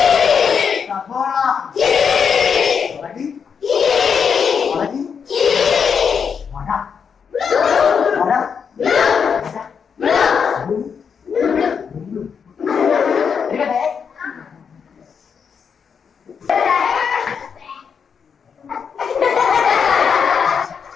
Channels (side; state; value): right; quieter; 6.6 dB